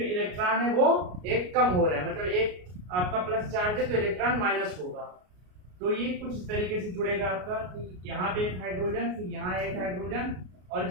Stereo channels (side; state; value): left; late; 33 ms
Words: इलेक्ट्रॉन है वो एक कम हो रहा है, मतलब एक आपका प्लस चार्ज है तो इलेक्ट्रॉन माइनस होगा। तो ये कुछ इस तरीके से जुड़ेगा आपका कि यहाँ पे एक हाइड्रोजन, फिर यहाँ एक हाइड्रोजन, और